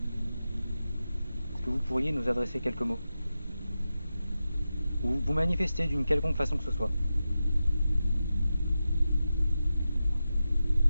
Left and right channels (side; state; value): both; inverted; correlation -0.92